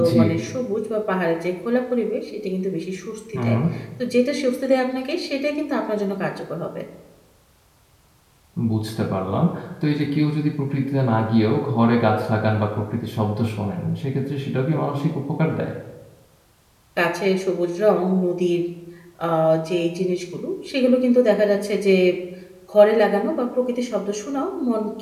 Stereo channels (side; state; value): both; identical; correlation 1.00